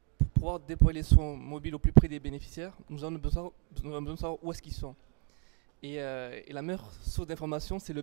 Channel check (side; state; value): left; quieter; 37.5 dB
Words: pour pouvoir déployer les soins mobiles au plus près des bénéficiaires, nous avons besoin de savoir où est-ce qu'ils sont. Et la meilleure source d'information, c'est le